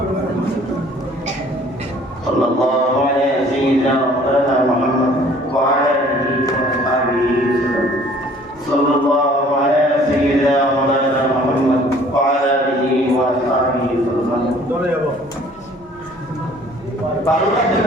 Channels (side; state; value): both; normal; correlation 0.54